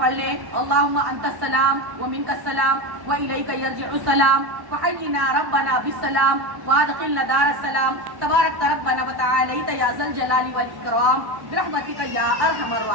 لیں، اللہم انت السلام ومنک السلام والیک یرجع السلام فحینا ربنا بالسلام وادخلنا دار السلام تبارک ربنا وتعالیت یا ذا الجلال والاکرام برحمتک یا ارحم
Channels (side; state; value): left; late; 1.1 ms